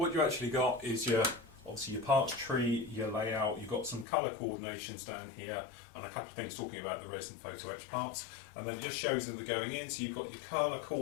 you actually got is obviously your parts tree, your layout, you've got some colour coordinations down here, and a couple of things talking about the resin photo etch parts. And then it just shows them they're going in, so you've got your colour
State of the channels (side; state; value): right; drops out; at 4.0 s